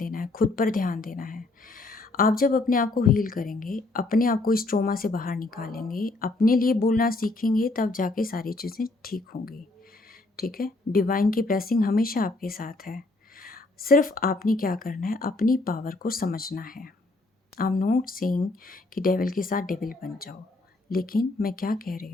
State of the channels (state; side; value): quieter; right; 3.1 dB